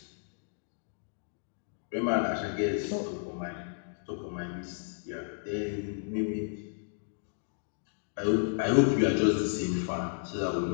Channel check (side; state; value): right; silent; digital silence